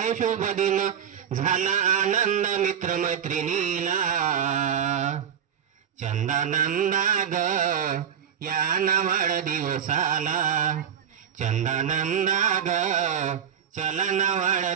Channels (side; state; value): left; quieter; 8.4 dB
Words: शुभ दिन, झाला आनंद मित्र मैत्रिणीला चंदानंदा ग या वाढदिवसाला, चंदानंदा ग चला ना